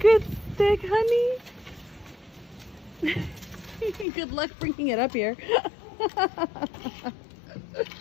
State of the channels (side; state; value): right; drops out; at 4.0 s